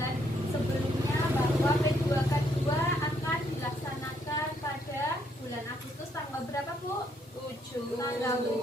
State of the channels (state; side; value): normal; both; correlation 0.71